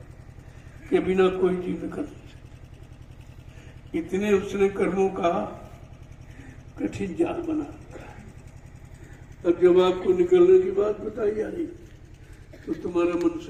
के बिना कोई जीव न कर सकता। इतने उसने कर्मों का कठिन जाल बना रखा है। अब जब आपको निकलने की बात बताई जा रही तो तुम्हारा मन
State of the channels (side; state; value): both; identical; correlation 1.00